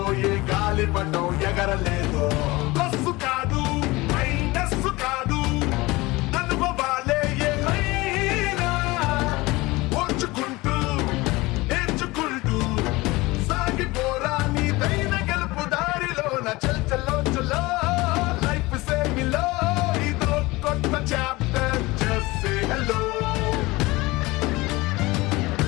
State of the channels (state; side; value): quieter; right; 21.6 dB